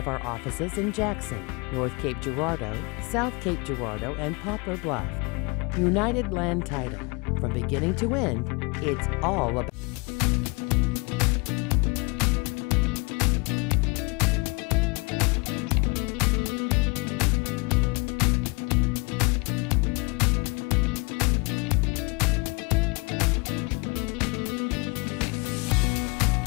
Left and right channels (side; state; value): right; quieter; 29.1 dB